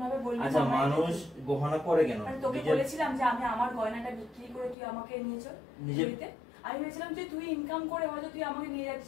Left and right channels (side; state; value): right; drops out; at 4.8 s